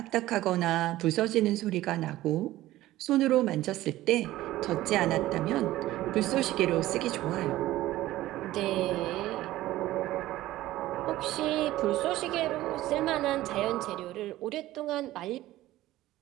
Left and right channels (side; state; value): left; quieter; 15.8 dB